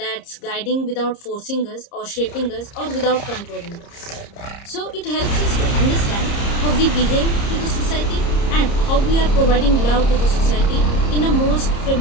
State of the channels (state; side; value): late; right; 30 ms